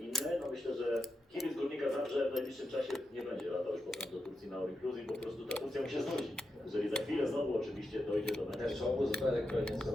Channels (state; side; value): normal; both; correlation 0.88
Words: No myślę, że kibic Górnika Zabrze w najbliższym czasie nie będzie latał już potem do Turcji na All Inclusive, bo po prostu ta Turcja mu się znudzi. Jeżeli za chwilę znowu oczywiście dojdzie do meczu. Czołgu zupełnie